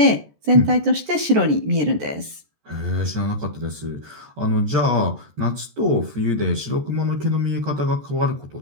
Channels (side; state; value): left; late; 14 ms